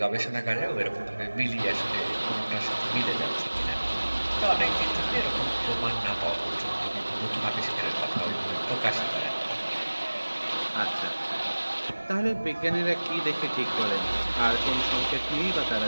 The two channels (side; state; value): both; inverted; correlation -1.00